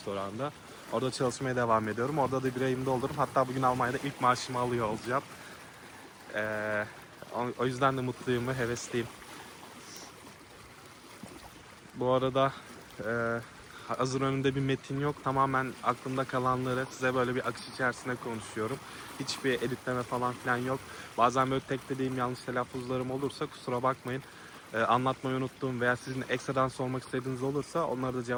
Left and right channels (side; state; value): both; identical; correlation 1.00